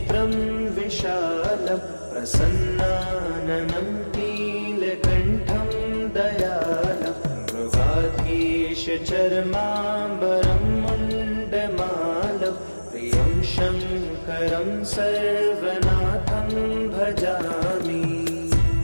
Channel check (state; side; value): inverted; both; correlation -1.00